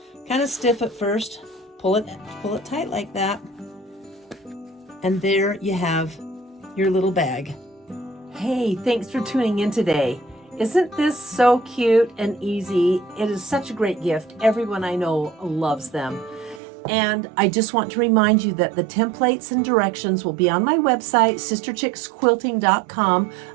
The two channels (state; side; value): drops out; left; at 16.6 s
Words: stiff at first. Pull it tight like that, and there you have your little bag. Hey, thanks for tuning in today. Isn't this so cute and easy? It is such a great gift. Everyone I know loves them. And I just want to remind you that the templates and directions will be on my website, sisterchicksquilting.com,